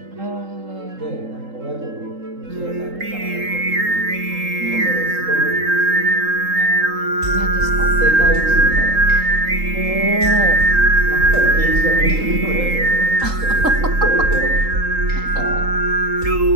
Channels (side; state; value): left; late; 3.8 ms